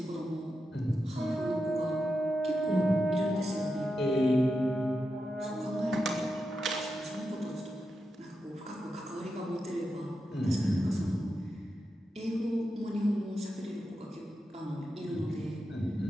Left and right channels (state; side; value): normal; both; correlation 0.88